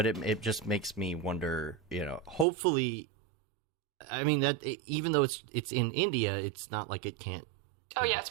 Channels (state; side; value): drops out; left; at 2.5 s